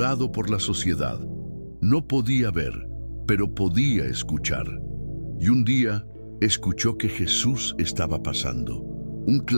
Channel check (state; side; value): inverted; both; correlation -1.00